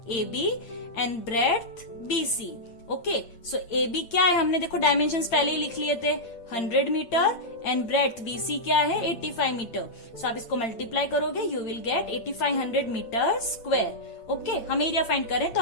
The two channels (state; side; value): late; right; 8.7 ms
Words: AB, and breadth BC। Okay, so AB क्या है, हमने देखो डायमेंशंस पहले ही लिख लिए थे, 100 मीटर, एंड ब्रेड्थ BC क्या है, 85 मीटर। सो आप इसको मल्टीप्लाई करोगे, you will get 8500 metre square. Okay, हम एरिया फाइंड करें तो